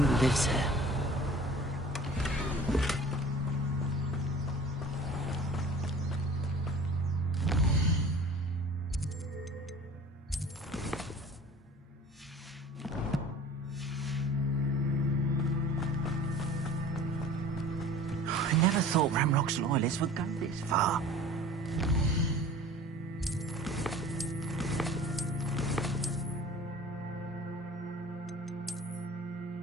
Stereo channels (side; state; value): both; normal; correlation 0.44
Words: lives here. I never thought Ramrock's loyalists would go this far.